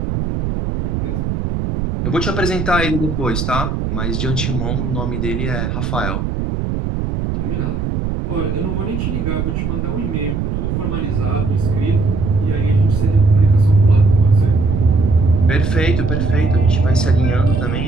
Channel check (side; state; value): right; noise; rumble, 2 dB below the sound